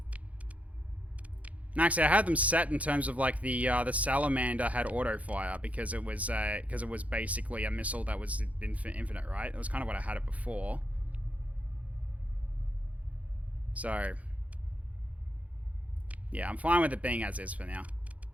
And actually, I had them set in terms of like the salamander had auto fire because it was basically a missile that was infinite, right? It was kind of what I had it before. So, yeah, I'm fine with it being as is for now.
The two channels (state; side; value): late; left; 0.068 ms